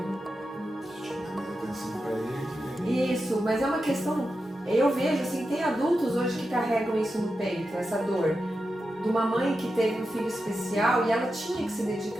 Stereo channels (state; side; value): normal; both; correlation 0.90